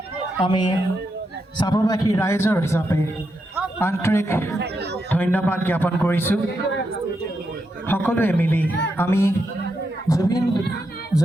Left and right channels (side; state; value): both; normal; correlation 0.83